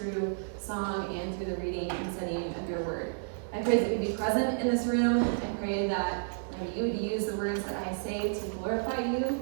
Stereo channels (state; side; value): silent; left; digital silence